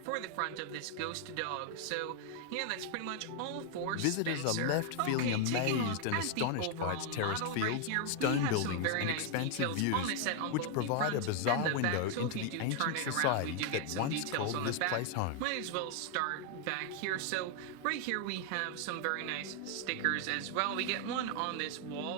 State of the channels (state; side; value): different; both; correlation 0.00